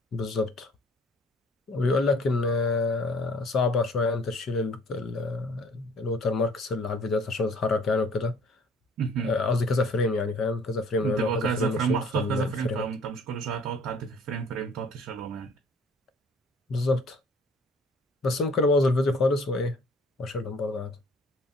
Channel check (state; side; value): normal; both; correlation 0.54